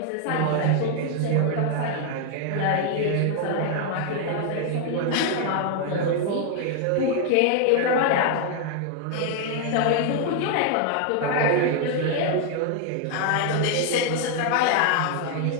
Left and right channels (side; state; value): both; different; correlation 0.00